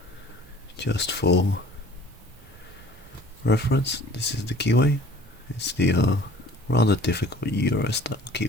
Just for reference, this is the keyway. It's the rather difficult Euro-style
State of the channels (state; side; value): normal; both; correlation 0.49